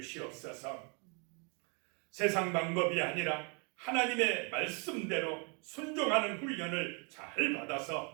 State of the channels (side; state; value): left; quieter; 34.8 dB